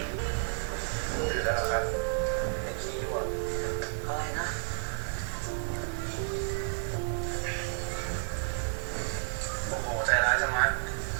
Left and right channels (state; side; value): silent; left; digital silence